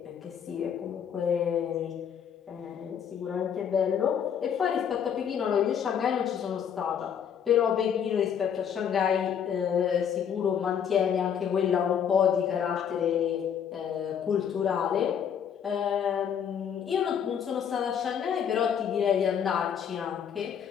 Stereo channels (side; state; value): right; quieter; 8.2 dB